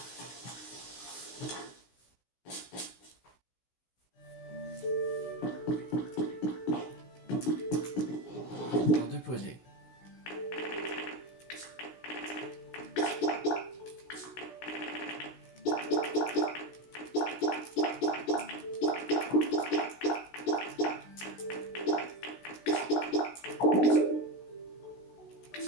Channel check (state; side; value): late; right; 16 ms